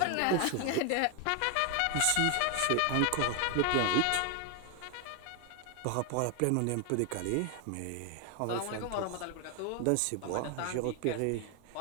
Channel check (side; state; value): both; different; correlation 0.01